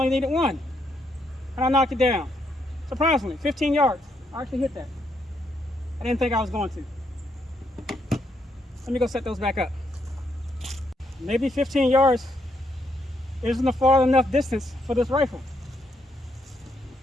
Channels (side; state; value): both; normal; correlation 0.76